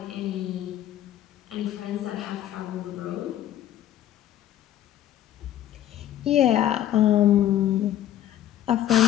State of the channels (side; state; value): right; quieter; 12.1 dB